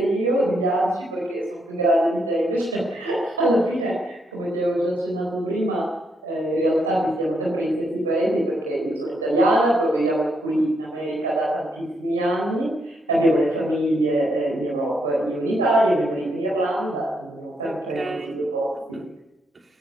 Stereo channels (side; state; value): both; normal; correlation 0.77